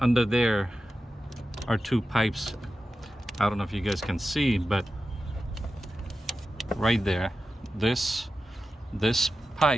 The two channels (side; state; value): both; normal; correlation 0.92